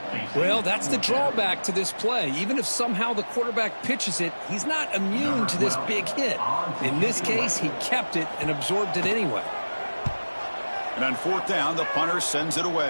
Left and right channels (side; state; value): both; inverted; correlation -1.00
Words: Well, that's the drawback to this play. Even if somehow the quarterback pitches it, he's not immune to this big hit. In this case, he kept it and absorbed it anyway. And on 4th down, the punter sends it